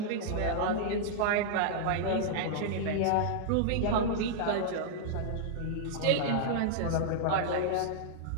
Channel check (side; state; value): both; different; correlation -0.01